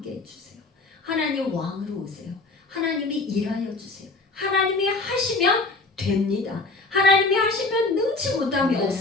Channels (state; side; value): quieter; right; 3.4 dB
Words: 해주세요. 하나님 왕으로 오세요. 하나님이 일하여 주세요. 하나님이 하시면 됩니다. 하나님이 하시면 능치 못함이